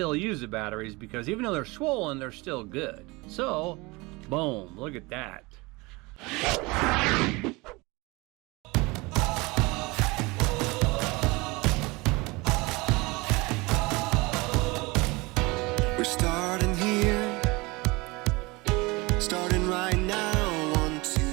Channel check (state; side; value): quieter; left; 24.4 dB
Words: use the batteries, because even though they're swollen, they're still good. So, boom, look at that. We're starting here, starting right now. 1, 2,